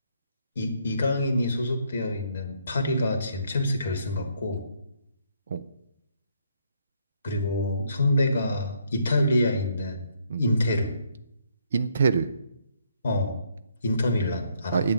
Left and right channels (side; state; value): both; inverted; correlation -0.70